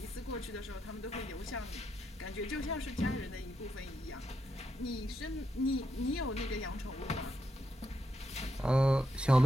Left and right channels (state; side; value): normal; both; correlation 0.81